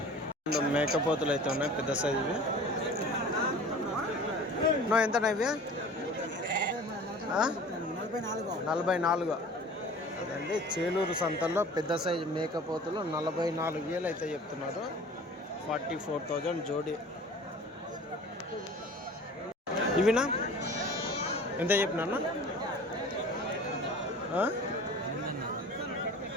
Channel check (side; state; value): both; normal; correlation 0.43